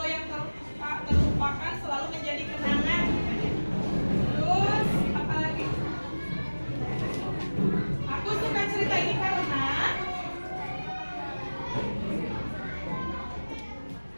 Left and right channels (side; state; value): both; inverted; correlation -1.00